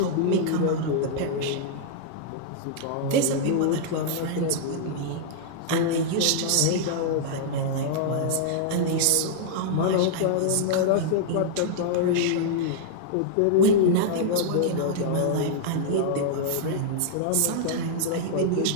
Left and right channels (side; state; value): both; different; correlation -0.01